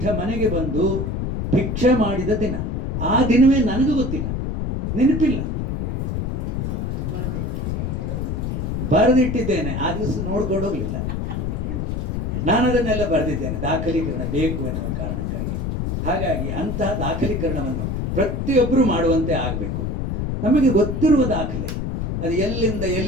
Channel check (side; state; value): left; noise; rumble, 2 dB below the sound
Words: ಮನೆಗೆ ಬಂದು ಭಿಕ್ಷೆ ಮಾಡಿದ ದಿನ. ಆ ದಿನವೇ ನನಗೂ ಗೊತ್ತಿಲ್ಲ, ನೆನಪಿಲ್ಲ. ಬರೆದಿಟ್ಟಿದ್ದೇನೆ, ಆ ದಿವಸ ನೋಡ್ಕೊಂಡು ಹೋಗಲಿಲ್ಲ. ನಾನು ಅದನ್ನೆಲ್ಲ ಬರೆದಿದ್ದೇನೆ, ದಾಖಲೀಕರಣ ಬೇಕು ಎನ್ನುವ ಕಾರಣಕ್ಕಾಗಿ. ಹಾಗಾಗಿ ಅಂತಹ ದಾಖಲೀಕರಣವನ್ನು ಪ್ರತಿಯೊಬ್ಬರು ಮಾಡುವಂತೆ ಆಗಬೇಕು. ನಮಗೆ ಗೊತ್ತಿರುವ ದಾಖಲೆ ಅದು ಎಲ್ಲಿಂದ